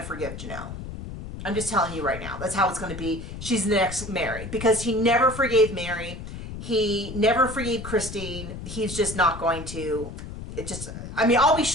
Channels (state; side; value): noise; left; rumble, 9 dB below the sound